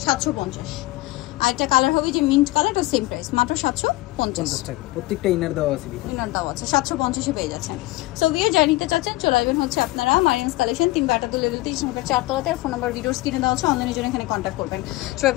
750। আর একটা কালার হবে যে মিন্ট কালার, তো সেম প্রাইস, মাত্র 750 টাকা। প্রত্যেকটা ইনার দেওয়া আছে, ইনার দাও আছে, 750-এ পেয়ে যাচ্ছেন। সো ভিউয়ার যারা নিতে চাচ্ছেন চলে আসবেন হচ্ছে আপনারা মারিয়ামস কালেকশন, 3 কাটাতুল লেভেল 3 নম্বর 4 তলাতে। আর ফোন নাম্বার ভিডিওস কিনে দেওয়া আছে, অনলাইনের জন্য এখানে কন্ট্যাক্ট করবেন। সবাই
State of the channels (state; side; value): quieter; right; 19.6 dB